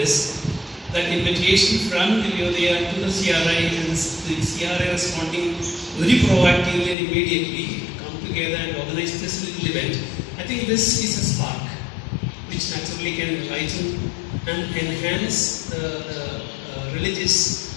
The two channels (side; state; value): right; drops out; at 7.0 s